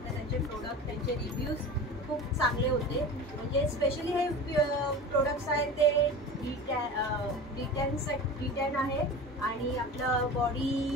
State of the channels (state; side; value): normal; both; correlation 0.33